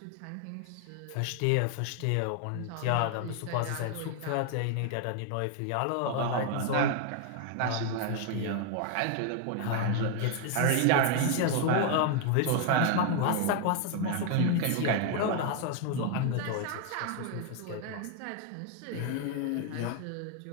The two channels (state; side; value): different; both; correlation 0.00